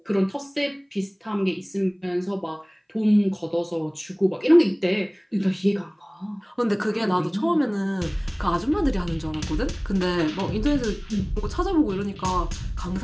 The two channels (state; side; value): identical; both; correlation 1.00